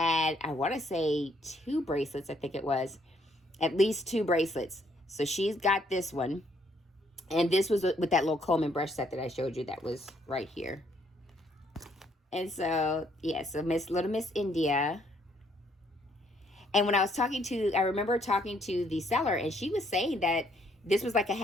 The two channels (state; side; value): normal; both; correlation 0.68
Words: I want to say 2 bracelets, I think it was. At least 2 bracelets. So she's got this one. And this was with that little comb and brush set that I showed you that was right here. And so, yeah, so little Miss India. And when I was I remember talking to the seller, and she was saying that this was like a